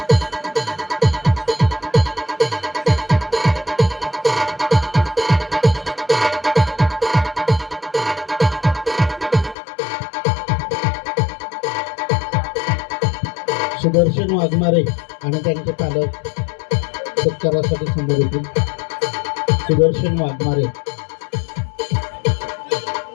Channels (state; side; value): drops out; right; at 9.6 s